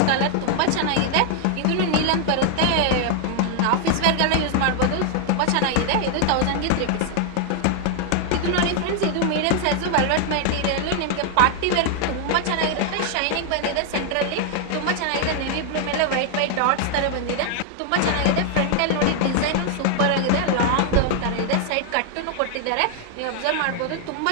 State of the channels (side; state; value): both; different; correlation 0.00